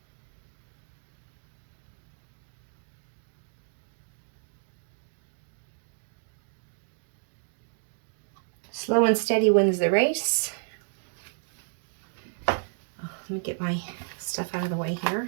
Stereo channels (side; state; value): left; silent; 57 dB below the other